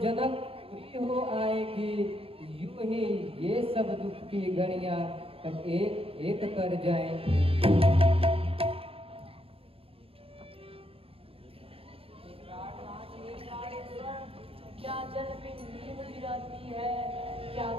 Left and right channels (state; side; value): late; left; 0.27 ms